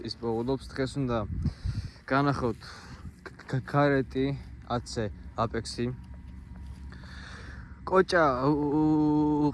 პოულობს, დღეს უნდა განახოთ კარეტი 10-ზე აპექსი. კოჭა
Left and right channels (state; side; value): identical; both; correlation 1.00